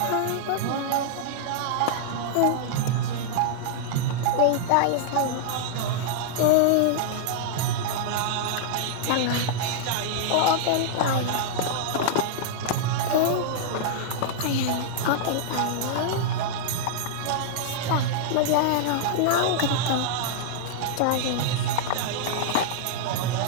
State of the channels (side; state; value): both; different; correlation -0.01